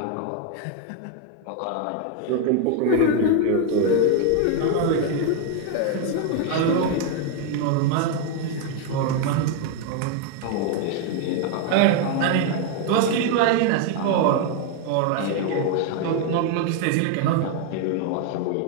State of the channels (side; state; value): both; different; correlation 0.01